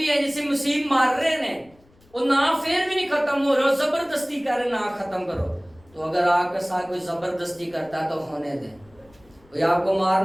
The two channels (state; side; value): noise; left; rumble, 30 dB below the sound